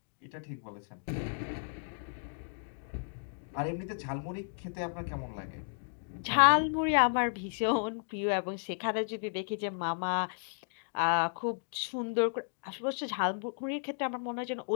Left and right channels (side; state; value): right; silent; digital silence